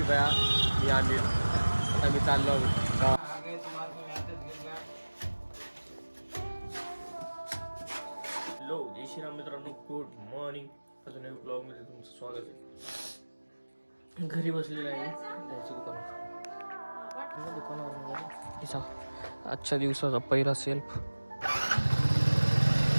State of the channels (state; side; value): inverted; both; correlation -1.00